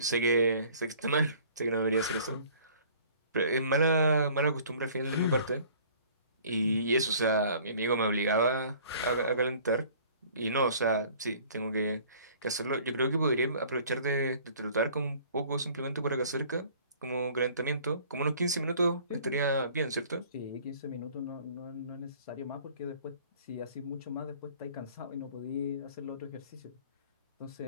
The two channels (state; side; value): inverted; both; correlation -0.52